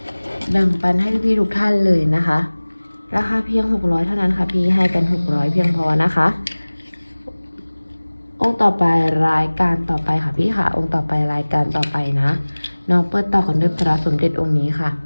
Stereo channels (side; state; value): both; inverted; correlation -1.00